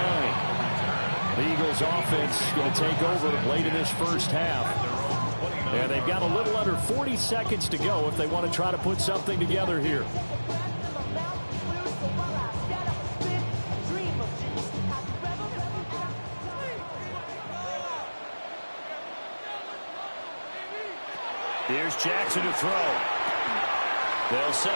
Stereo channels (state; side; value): inverted; both; correlation -1.00